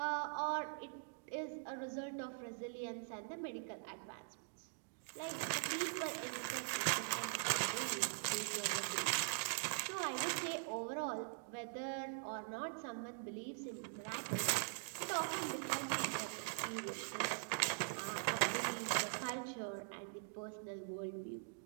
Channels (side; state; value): left; silent; digital silence